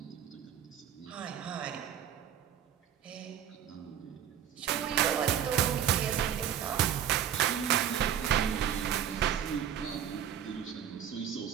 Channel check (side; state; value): left; quieter; 9.5 dB